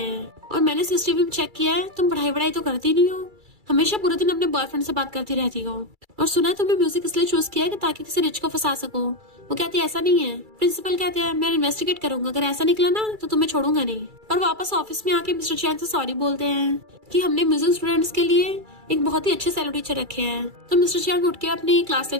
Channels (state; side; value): late; left; 2.3 ms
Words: हैं, और मैंने सीसीटीवी में चेक किया है, तुम पढ़ाई तो करती नहीं हो, हमेशा पूरे दिन अपने बॉयफ्रेंड से बात करती रहती हो, और सुना है तुमने म्यूजिक इसलिए चूज किया है कि ताकि किसी रिच को फंसा सको। वो कहती है ऐसा नहीं है। प्रिंसिपल कहते हैं मैं इन्वेस्टिगेट करूंगा, अगर ऐसा निकला ना तो तुम्हें छोड़ूंगा नहीं। और वापस ऑफिस में आके मिस्टर चियांग से सॉरी बोलते हैं कि हमने म्यूजिक स्टूडेंट्स के लिए एक बहुत ही अच्छे सेलो टीचर रखे हैं। तो मिस्टर चियांग उठ के अपनी क्लास